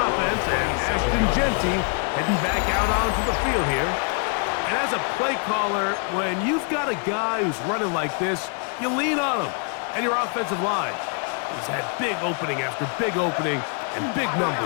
and Ashton Genty heading back out onto the field here. And as a play caller, when you've got a guy who's running like this, you lean on him and your offensive line. He's had big opening after big opening and big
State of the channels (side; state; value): right; quieter; 39.7 dB